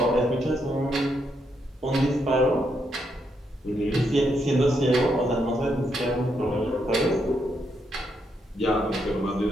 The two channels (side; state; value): both; normal; correlation 0.79